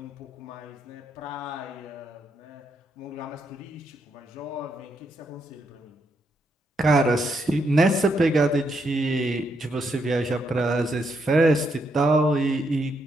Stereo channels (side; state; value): both; normal; correlation 0.78